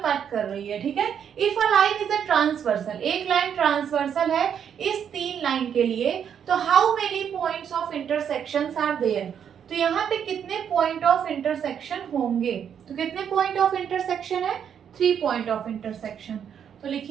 कट कर रही है। ठीक है, if a line is a transversal, एक लाइन ट्रांसवर्सल है इस तीन लाइन के लिए, तो how many points of intersections are there, तो यहाँ पे कितने पॉइंट ऑफ इंटरसेक्शन होंगे। तो कितने पॉइंट ऑफ इंटरसेक्शन है, 3 पॉइंट ऑफ इंटरसेक्शन। तो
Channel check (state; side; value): quieter; left; 8.3 dB